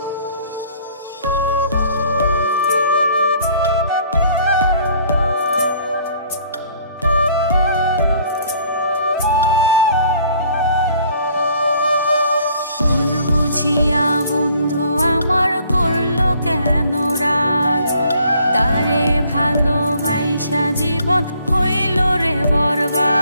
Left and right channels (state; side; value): inverted; both; correlation -0.59